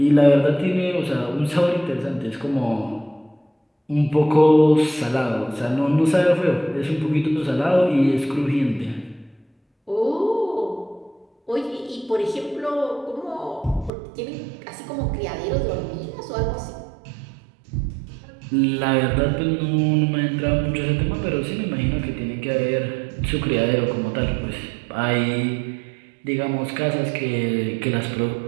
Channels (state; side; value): drops out; left; at 13.9 s